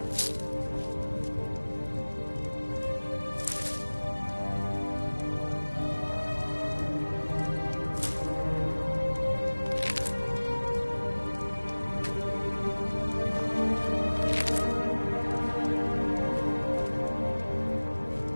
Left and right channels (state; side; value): inverted; both; correlation -1.00